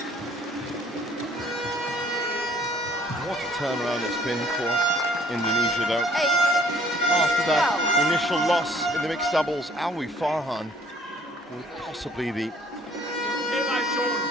What a turnaround it's been for Indonesia though. After that initial loss in the mixed doubles, Alwi Farhan with possibly the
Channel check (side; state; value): both; normal; correlation 0.59